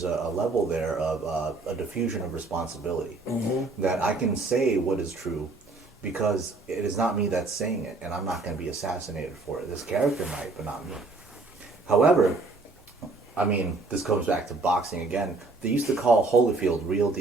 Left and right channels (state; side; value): quieter; left; 3.5 dB